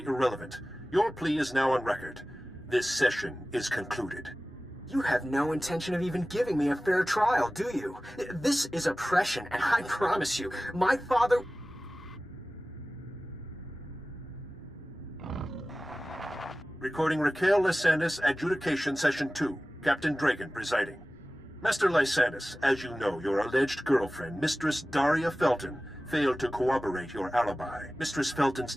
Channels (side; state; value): both; normal; correlation 0.97